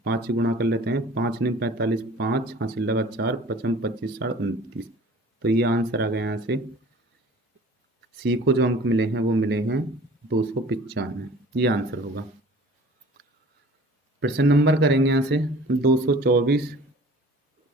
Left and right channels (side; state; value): both; normal; correlation 0.46